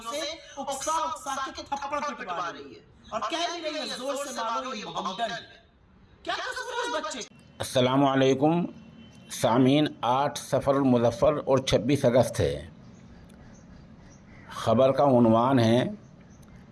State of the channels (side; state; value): both; identical; correlation 1.00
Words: से उकसा के थप्पड़ पिटवा रही है और कह भी रही है जोर से मारो ये मोहम्मदन है। क्या कसूर है उस बच्चे? अस्सलाम वालेकुम सामीन। 8 सफ़र मुज़फ़्फ़र और 26 अगस्त है। ख़बर का उन्वान है